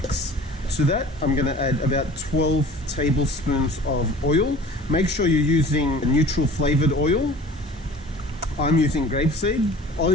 To that, I'm going to add about 12 tablespoons of oil. Make sure you're using neutral flavored oil. I'm using grapeseed.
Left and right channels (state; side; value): normal; both; correlation 0.44